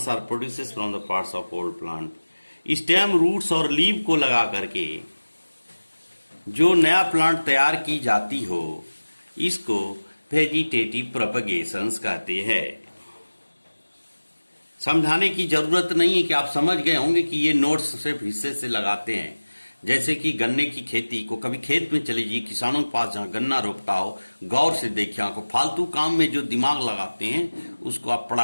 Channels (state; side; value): inverted; both; correlation -1.00